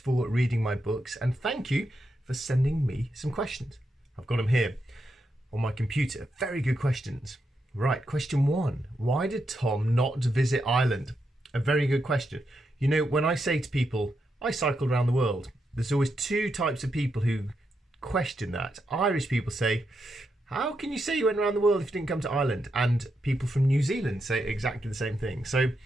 reading my books, and thank you for sending me some questions. I've got them here on my computer. Very good questions. Right, question one. Why did Tom not visit Ireland? A very good question. You know, when I say to people, I cycled around the world, there's always two types of people who question that. Irish people say, how can you say you went around the world if you didn't come to Ireland? And people from New Zealand say exactly the same thing. So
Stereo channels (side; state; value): both; normal; correlation 0.83